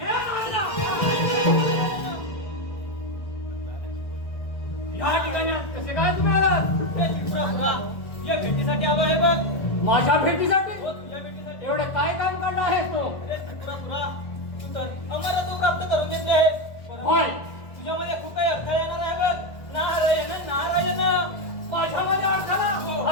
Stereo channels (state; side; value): late; right; 1.6 ms